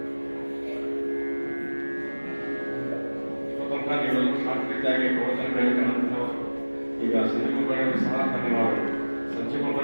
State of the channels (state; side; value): inverted; both; correlation -1.00